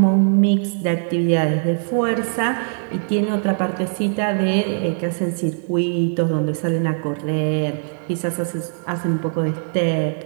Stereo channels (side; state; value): left; silent; 65 dB below the other